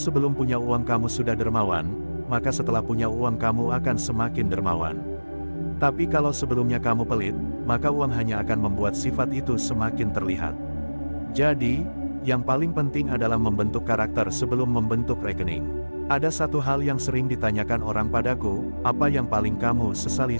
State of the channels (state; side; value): inverted; both; correlation -1.00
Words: punya uang kamu sudah dermawan, maka setelah punya uang kamu akan semakin dermawan. Tapi kalau sebelumnya kamu pelit, maka uang hanya akan membuat sifat itu semakin terlihat. Jadi, yang paling penting adalah membentuk karakter sebelum membentuk rekening. Ada satu hal yang sering ditanyakan orang padaku, apa yang paling kamu sesali